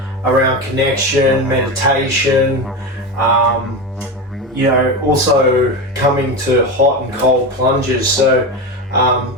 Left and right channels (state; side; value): normal; both; correlation 0.20